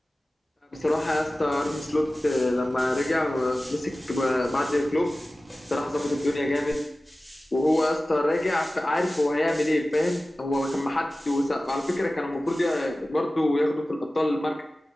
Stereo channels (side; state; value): both; normal; correlation 0.96